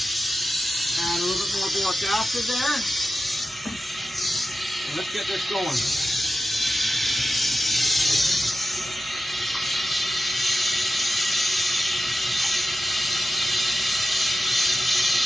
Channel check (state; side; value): normal; both; correlation 0.92